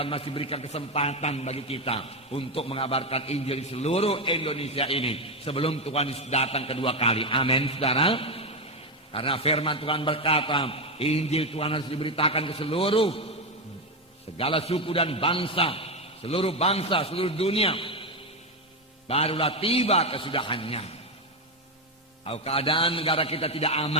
masih berikan kesempatan bagi kita untuk mengabarkan Injil di seluruh Indonesia ini sebelum Tuhan datang kedua kali. Amin, saudara. Karena firman Tuhan berkata, Injil Tuhan harus diberitakan ke seluruh segala suku dan bangsa, seluruh dunia. Barulah tiba kesudahannya. Kalau keadaan negara kita tidak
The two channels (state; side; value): normal; both; correlation 0.10